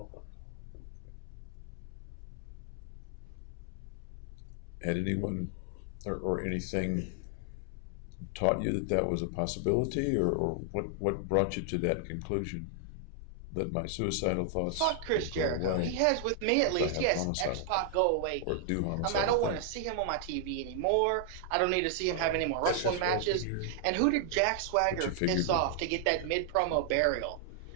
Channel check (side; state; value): both; different; correlation 0.00